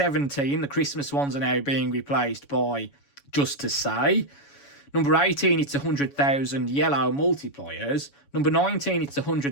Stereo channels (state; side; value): late; right; 7.1 ms